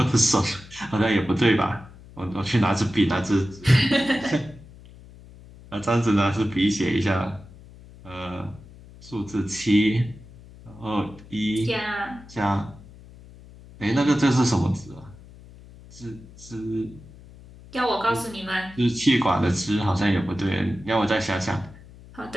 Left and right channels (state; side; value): noise; left; hum, 20 dB below the sound